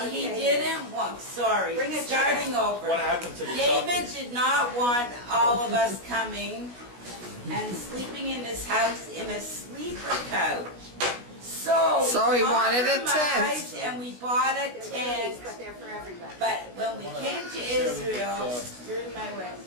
he David. didn't want, sorry, Bring it starting over. What happened to the David chocolate? did not want all of us coming and sleeping in his house in a sleeper couch. So he wanted a tent. compromised And we bought a tent. But they're for everybody. But when we came to Israel, you're in my way.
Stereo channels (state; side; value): late; left; 17 ms